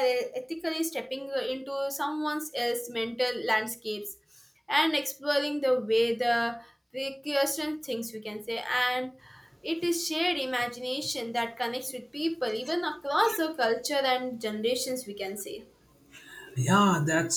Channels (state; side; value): identical; both; correlation 1.00